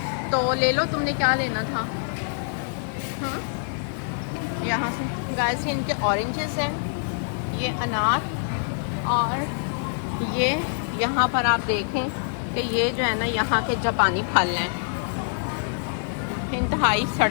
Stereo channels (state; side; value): silent; right; digital silence